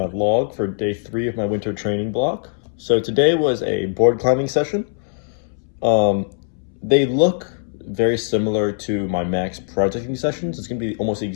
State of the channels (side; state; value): right; silent; 65 dB below the other